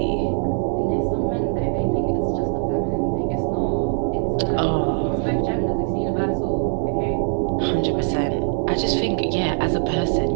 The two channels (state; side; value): silent; left; digital silence